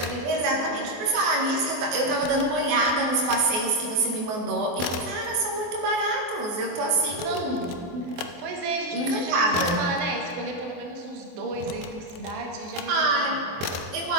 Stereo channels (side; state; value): left; late; 23 ms